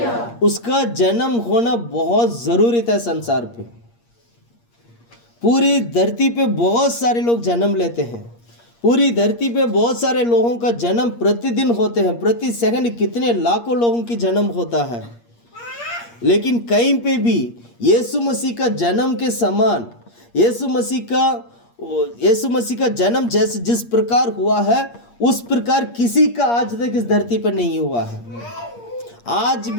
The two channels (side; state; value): right; late; 8.5 ms